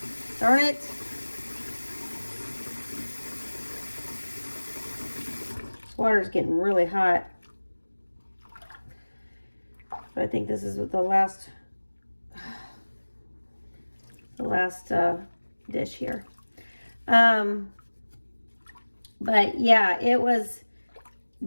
Darn it. This water's getting really hot. But I think this is the last dish here. But yeah, it was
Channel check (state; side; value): inverted; both; correlation -1.00